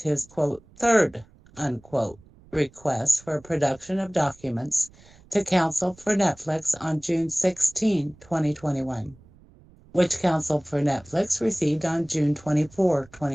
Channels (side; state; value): right; noise; rumble, 26 dB below the sound